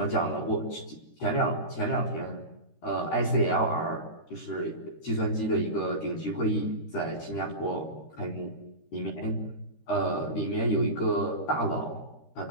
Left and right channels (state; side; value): late; right; 13 ms